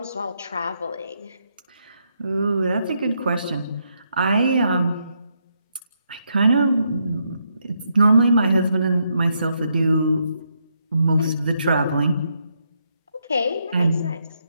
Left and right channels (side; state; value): both; inverted; correlation -0.78